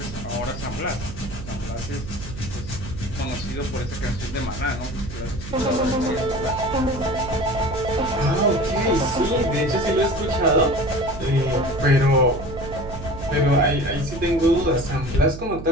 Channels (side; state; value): right; noise; hum, 11 dB below the sound